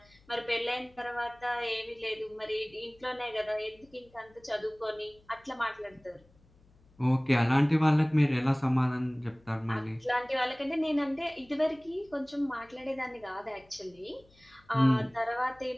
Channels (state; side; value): noise; left; hum, 30 dB below the sound